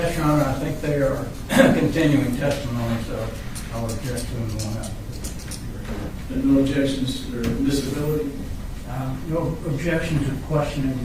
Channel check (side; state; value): both; identical; correlation 1.00